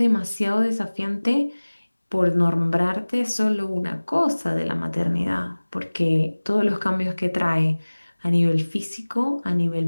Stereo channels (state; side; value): inverted; both; correlation -1.00